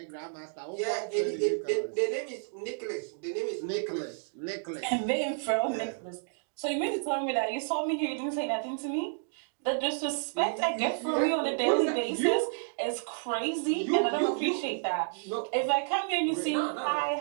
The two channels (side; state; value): left; silent; digital silence